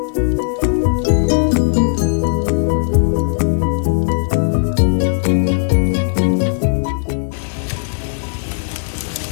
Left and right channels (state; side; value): silent; right; 68 dB below the other